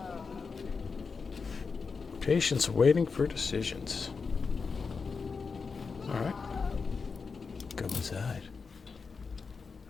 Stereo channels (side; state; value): right; quieter; 5.0 dB